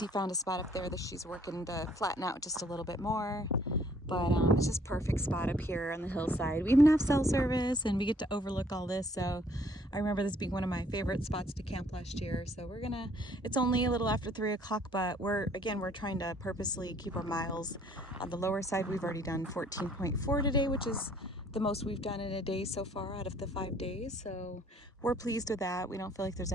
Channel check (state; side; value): normal; both; correlation 0.61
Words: found a spot up there that she's working to flatten out just a little bit more. But it's just perfect spot up here on the hillside. We even have cell service and we get to overlook all this. So I remember this being one of my favorite spots to camp last year. So it's only a little after 3 o'clock, but we're trying to purposely keep our miles on the lower side. We've already done 14.4 today, which is the most we've done in a day so far out of the 5 days. So we're pleased with that. We don't feel like there's